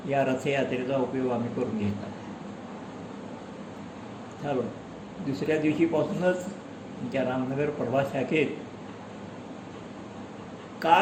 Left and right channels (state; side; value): identical; both; correlation 1.00